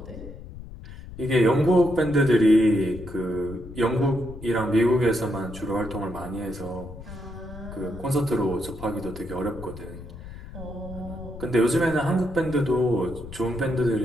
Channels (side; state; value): left; noise; rumble, 14 dB below the sound